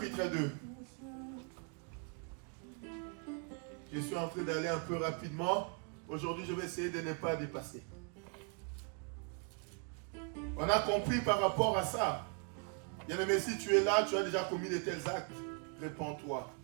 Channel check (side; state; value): left; quieter; 36.5 dB